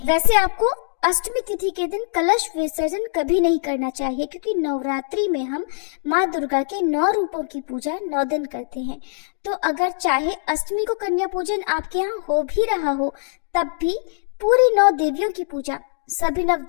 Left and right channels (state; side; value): silent; right; digital silence